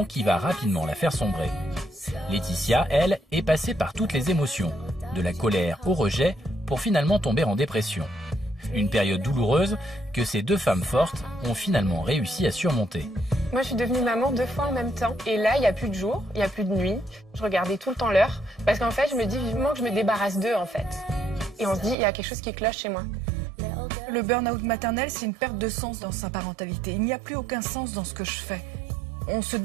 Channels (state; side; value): drops out; left; at 22.0 s